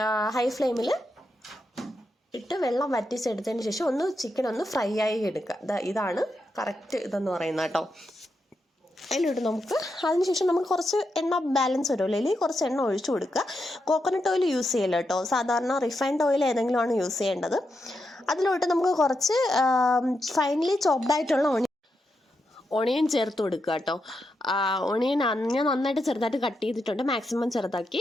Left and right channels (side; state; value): both; normal; correlation 0.85